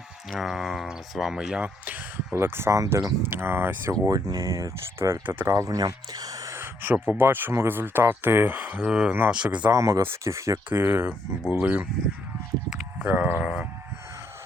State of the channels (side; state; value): both; normal; correlation 0.73